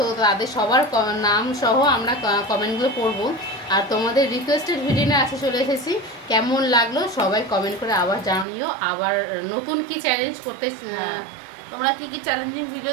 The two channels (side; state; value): left; drops out; at 8.5 s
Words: তাদের সবার নাম সহ আমরা কমেন্টগুলো পড়বো। আর তোমাদের রিকোয়েস্টেড ভিডিও নিয়ে আসে চলে এসেছি। কেমন লাগলো সবাই কমেন্ট করে আবার জানিও। আবার নতুন কি চ্যালেঞ্জ করতে তোমরা কি কি চ্যালেঞ্জিং